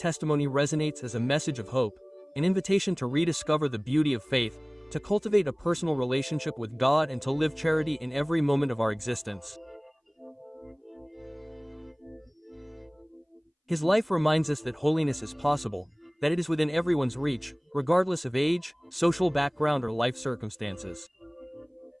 resonates as a message of hope, an invitation to rediscover the beauty of faith, to cultivate a personal relationship with God and to live charity in every moment of our existence. His life reminds us that holiness is possible, that it is within everyone's reach, regardless of age, social background, or life circumstances.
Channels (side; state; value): both; identical; correlation 1.00